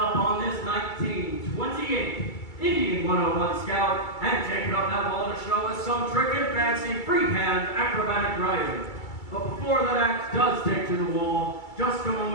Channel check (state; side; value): late; right; 2.3 ms